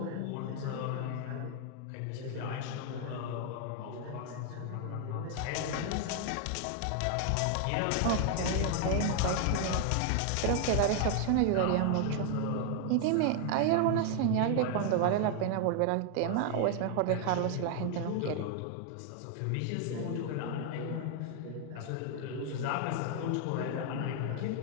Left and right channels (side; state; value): both; different; correlation 0.00